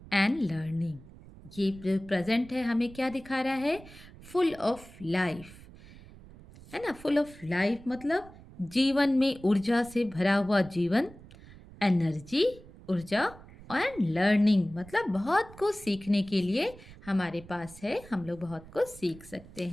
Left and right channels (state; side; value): noise; right; rumble, 19 dB below the sound